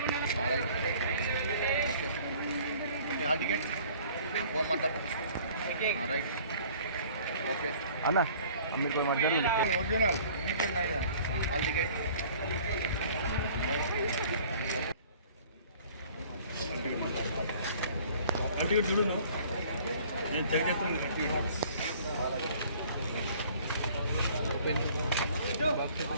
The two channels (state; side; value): inverted; both; correlation -0.52